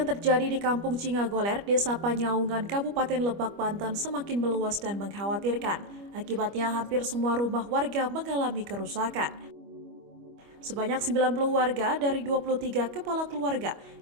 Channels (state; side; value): late; left; 25 ms